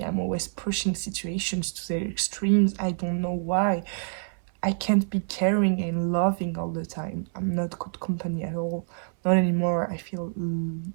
I'm always pushing situations to their extremes. I don't know why. I can't be caring and loving all the time. I'm not good company at all. Not anymore. I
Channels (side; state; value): left; silent; 60 dB below the other